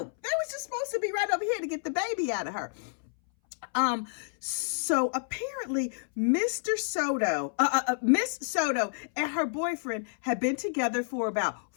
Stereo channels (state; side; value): silent; right; 58 dB below the other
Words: They was just supposed to be right over here to get the baby out of her. So apparently Miss Soto and her boyfriend had been together for about